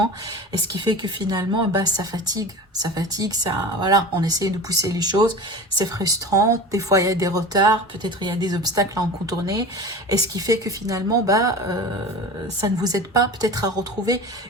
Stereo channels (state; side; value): normal; both; correlation 0.33